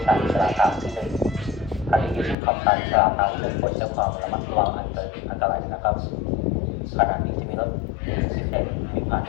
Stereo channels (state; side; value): drops out; right; at 2.4 s